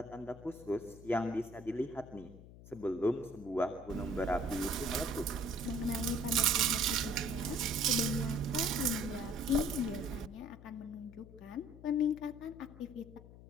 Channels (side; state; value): left; noise; hum, 17 dB below the sound